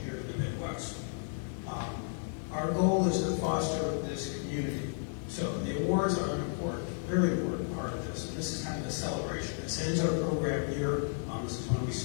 here in the Midwest. Our goal is to foster this community. So the awards are an important, very important part of this. And this is kind of a celebration. This ends our program here. This is when we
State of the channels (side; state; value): right; silent; 56 dB below the other